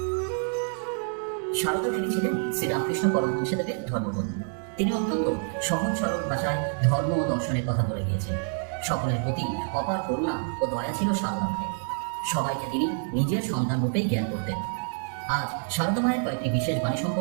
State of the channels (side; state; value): left; silent; 56 dB below the other